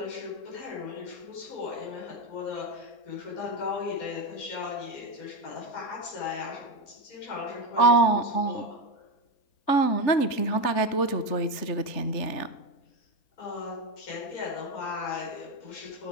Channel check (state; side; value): late; right; 3.5 ms